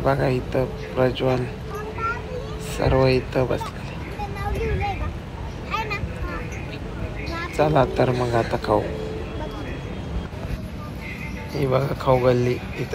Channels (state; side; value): identical; both; correlation 1.00